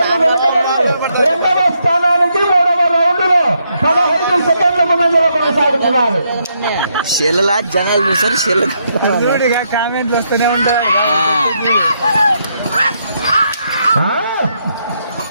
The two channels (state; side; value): inverted; both; correlation -0.77